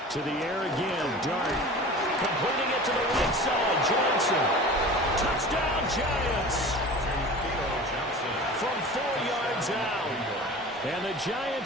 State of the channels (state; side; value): normal; both; correlation 0.38